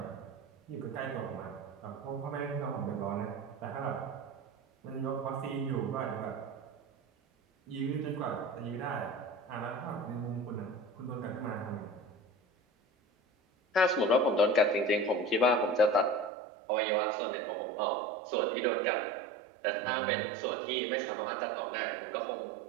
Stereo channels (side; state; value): left; drops out; at 16.3 s